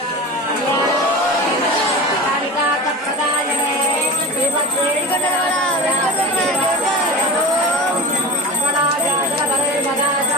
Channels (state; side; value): normal; both; correlation 0.28